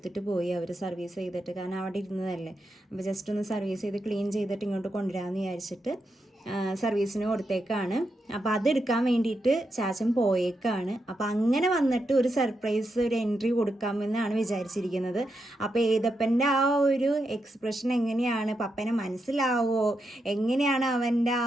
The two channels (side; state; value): both; normal; correlation 0.84